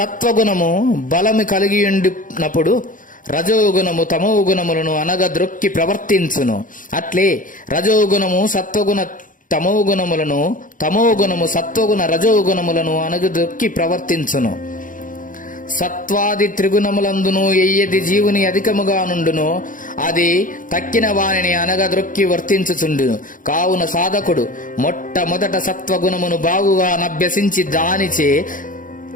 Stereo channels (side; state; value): right; late; 0.39 ms